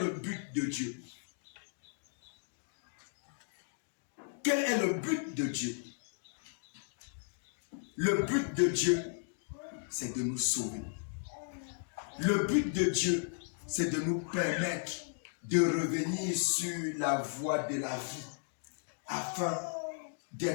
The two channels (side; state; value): right; silent; digital silence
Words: but de Dieu? Quel est le but de Dieu? Le but de Dieu, c'est de nous sauver. Le but de Dieu, c'est de nous permettre de revenir sur la voie de la vie afin